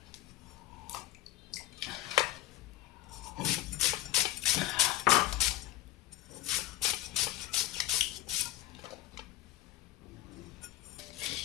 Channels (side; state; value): right; quieter; 15.7 dB